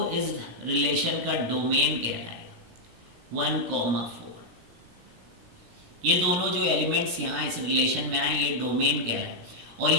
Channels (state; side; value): late; left; 17 ms